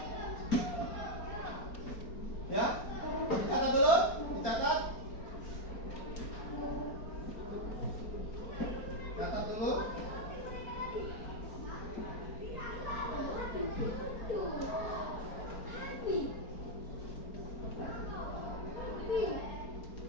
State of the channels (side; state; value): right; late; 4.4 ms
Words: Ya, dicatat dulu, dicatat. Catat dulu.